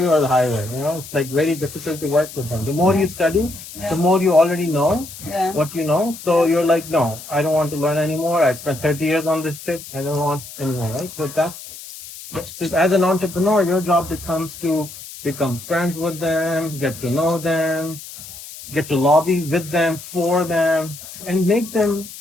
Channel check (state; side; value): noise; left; hiss, 14 dB below the sound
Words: or the highway. It's like very difficult to work with them. The more you study, the more you already know what you know. So you're like, no, I don't want to learn anymore. I spent 30 years on this shit. I don't want anymore, right? So as an entrepreneur, your job becomes to become friends with them, get to know them, get to lobby with them, for them, and make them